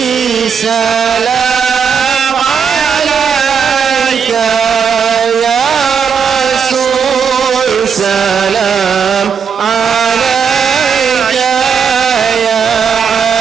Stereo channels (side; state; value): left; quieter; 6.7 dB